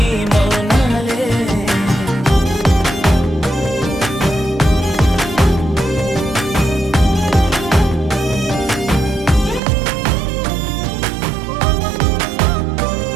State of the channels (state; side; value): drops out; left; at 9.6 s